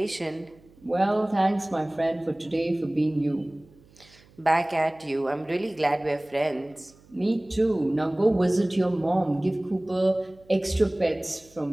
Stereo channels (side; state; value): right; noise; hum, 28 dB below the sound